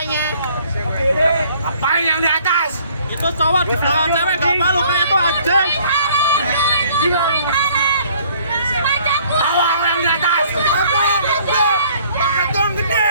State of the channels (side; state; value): both; inverted; correlation -0.58